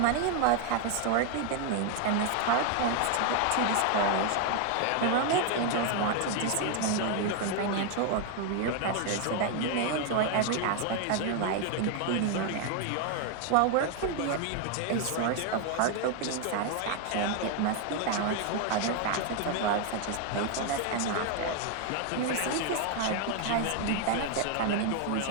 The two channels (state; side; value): different; both; correlation 0.01